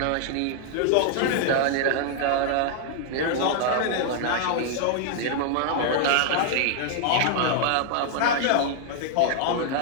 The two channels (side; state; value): both; different; correlation 0.00